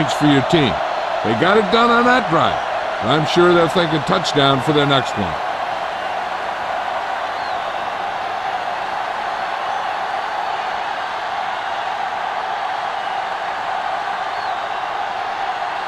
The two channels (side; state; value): both; identical; correlation 1.00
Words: for your team. They got it done on that drive. I'm sure they're thinking touchdown for their next one.